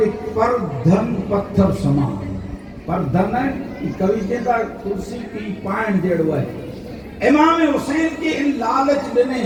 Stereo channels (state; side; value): identical; both; correlation 1.00